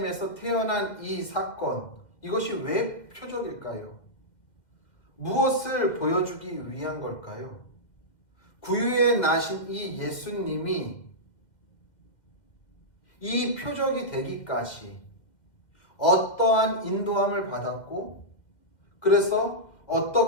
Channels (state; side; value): late; right; 2.2 ms